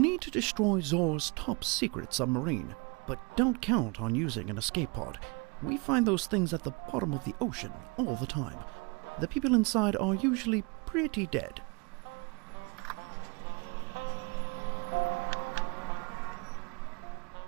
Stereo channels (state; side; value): quieter; left; 29.9 dB